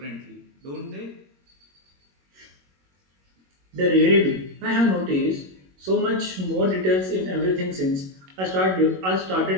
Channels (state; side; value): late; left; 21 ms